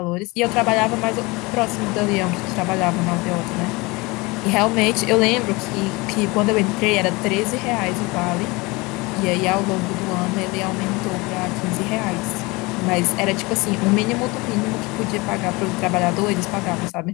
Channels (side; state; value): right; quieter; 24.4 dB